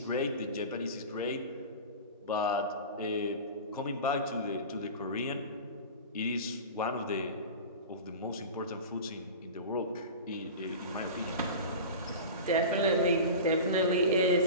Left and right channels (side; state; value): both; inverted; correlation -0.32